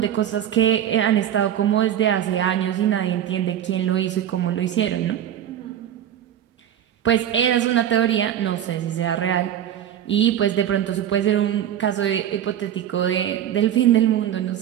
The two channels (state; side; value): quieter; left; 10.5 dB